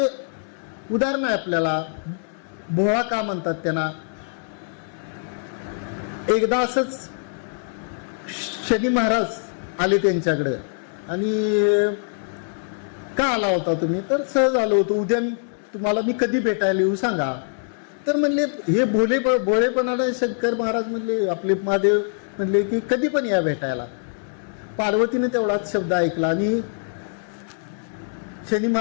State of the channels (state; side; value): silent; right; digital silence